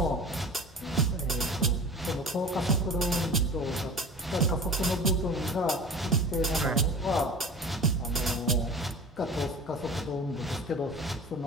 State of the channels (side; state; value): both; normal; correlation 0.37